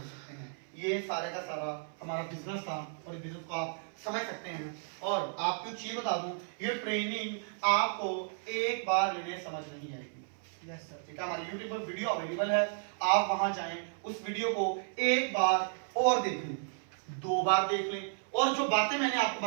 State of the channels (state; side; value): silent; left; 55 dB below the other